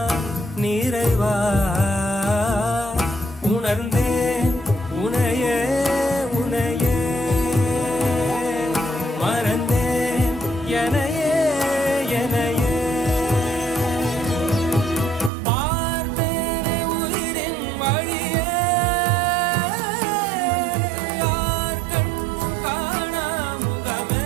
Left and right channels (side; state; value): left; drops out; at 15.3 s